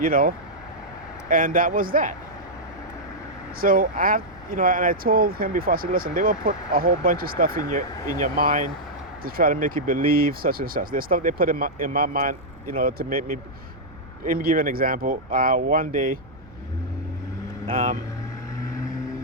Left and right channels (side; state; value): right; noise; rumble, 23 dB below the sound